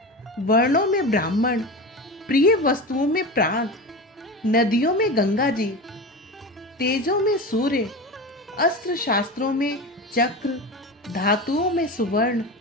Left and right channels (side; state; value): both; normal; correlation 0.27